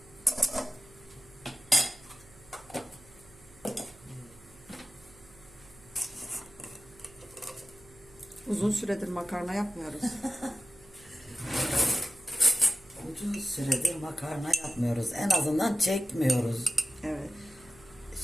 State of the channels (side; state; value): right; noise; hum, 24 dB below the sound